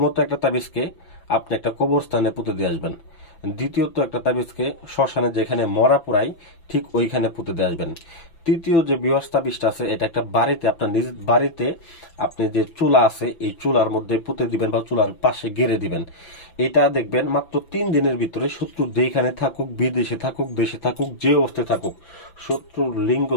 একটা তাবিজকে আপনি একটা কবরস্থানে পুঁতে দিয়ে আসবেন। দ্বিতীয়ত একটা তাবিজকে শ্মশানে যেখানে মরা পোড়াই ঠিক ওইখানে পুঁতে দিয়ে আসবেন। তৃতীয় যে ভিউয়ার্স তাবিজটা আছে, এটা একটা বাড়িতে, আপনার নিজ বাড়িতে আপনি যে চুলা আছে এই চুলার মধ্যে পুঁতে দিবেন বা চুলার পাশে গেড়ে দিবেন। এটা দেখবেন মাত্র 3 দিনের ভিতরে শত্রু যেখানে থাকুক, বিদেশে থাকুক, দেশে থাকুক, যে অবস্থায় থাকুক, শত্রুর লিঙ্গ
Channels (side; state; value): right; late; 6.0 ms